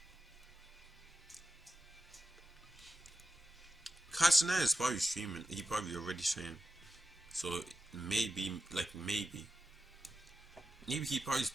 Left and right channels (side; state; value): both; normal; correlation 0.92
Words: Castanet is probably streaming. He probably already streamed. So maybe he probably